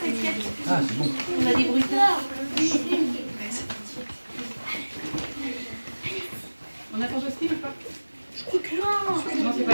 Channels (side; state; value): both; inverted; correlation -1.00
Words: Ah, c'est bon. On a des bruitages. On a ton Jocelyne ou pas? Je crois que non. Non, c'est pas